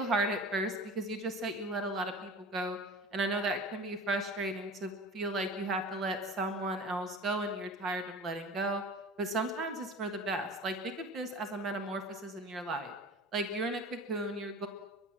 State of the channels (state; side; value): normal; both; correlation 0.38